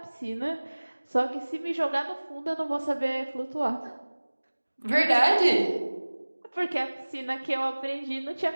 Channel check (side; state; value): both; inverted; correlation -1.00